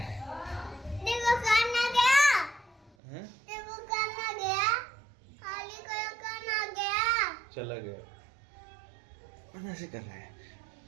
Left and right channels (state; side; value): drops out; left; at 3.0 s